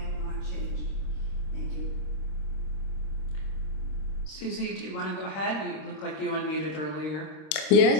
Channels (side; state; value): right; late; 27 ms